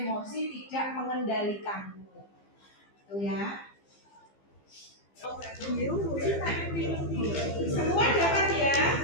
tidak mengendalikanmu. Tuh ya. Semua dapat ya.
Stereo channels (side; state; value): right; late; 15 ms